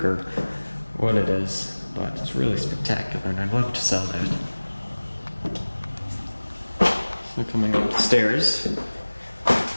or what it is, but it's really spectacular, and I'd love to sell that. So coming up the stairs,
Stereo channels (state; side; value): inverted; both; correlation -1.00